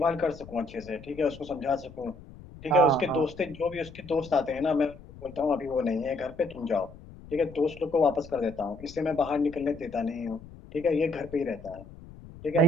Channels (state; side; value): noise; left; rumble, 18 dB below the sound